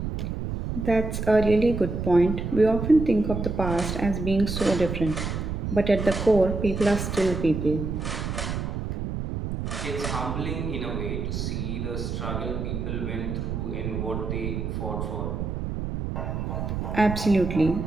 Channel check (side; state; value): right; noise; rumble, 3 dB below the sound